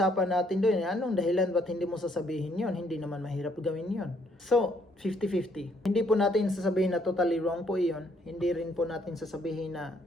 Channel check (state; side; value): normal; both; correlation 0.68